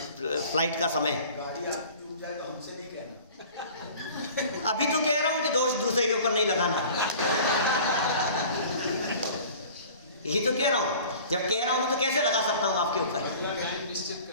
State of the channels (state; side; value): inverted; both; correlation -0.44